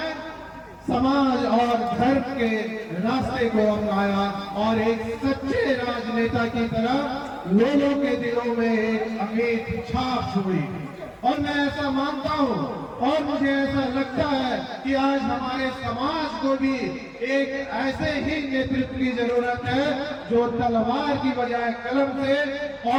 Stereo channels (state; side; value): identical; both; correlation 1.00